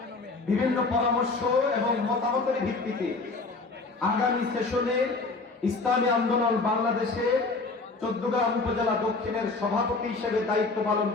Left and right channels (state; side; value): quieter; right; 3.7 dB